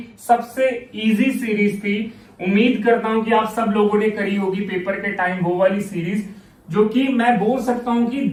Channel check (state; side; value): identical; both; correlation 1.00